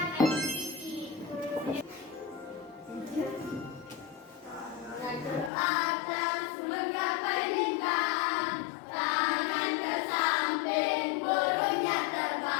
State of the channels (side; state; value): right; drops out; at 5.5 s